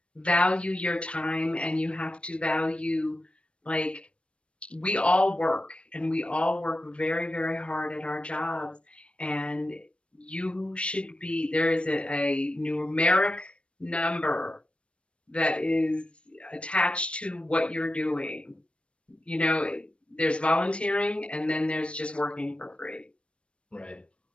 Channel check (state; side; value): late; right; 0.059 ms